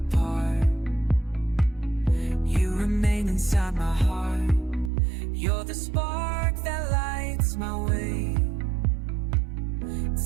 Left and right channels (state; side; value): drops out; left; at 4.9 s